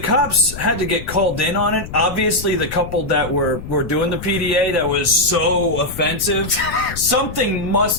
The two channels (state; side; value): noise; left; rumble, 11 dB below the sound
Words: had to get called in on it, obviously the couple that were doing the PDA that was so offensive, something